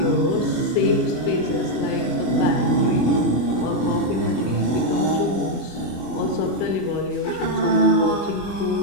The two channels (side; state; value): right; late; 24 ms